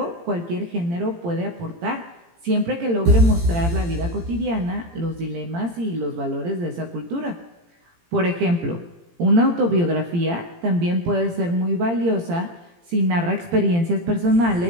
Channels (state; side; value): late; left; 18 ms